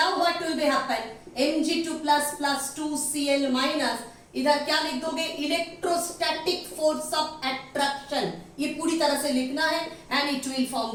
what will be happen, Mg2 plus 2Cl minus, इधर क्या लिख दोगे, electrostatic force of attraction, ये पूरी तरह से लिखना है and it will form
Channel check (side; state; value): both; identical; correlation 1.00